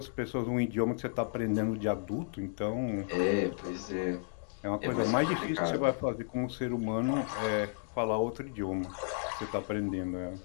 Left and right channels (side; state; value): right; silent; digital silence